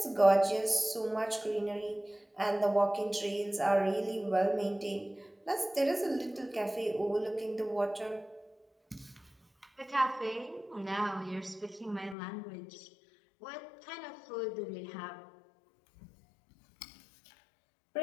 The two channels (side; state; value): right; drops out; at 12.2 s